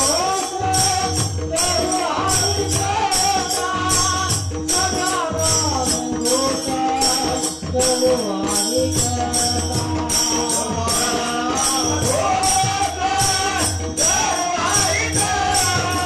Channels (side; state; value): both; identical; correlation 1.00